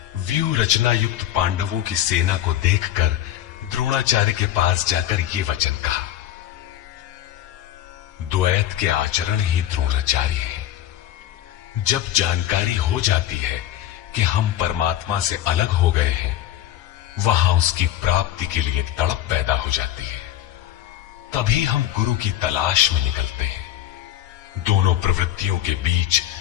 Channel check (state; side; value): quieter; right; 12.5 dB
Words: व्यूह रचना युक्त पांडवों की सेना को देखकर द्रोणाचार्य के पास जाकर ये वचन कहा। द्वैत के आचरण ही द्रोणाचार्य है। जब जानकारी हो जाती है कि हम परमात्मा से अलग हो गए हैं, वहां उसकी प्राप्ति के लिए तड़प पैदा हो जाती है। तभी हम गुरु की तलाश में निकलते हैं। दोनों प्रवृत्तियों के बीच